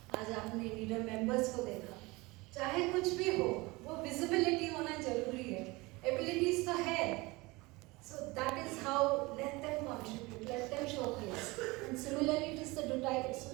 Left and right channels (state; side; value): quieter; left; 23.3 dB